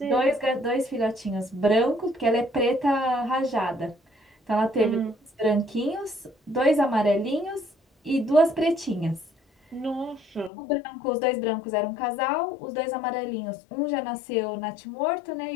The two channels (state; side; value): drops out; right; at 10.5 s